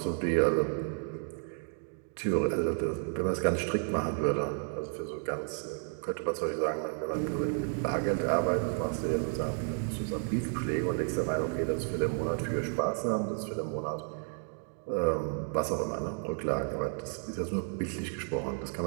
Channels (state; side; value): silent; left; 56 dB below the other